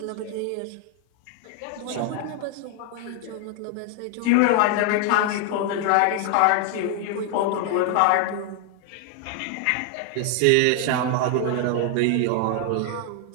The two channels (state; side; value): different; both; correlation 0.00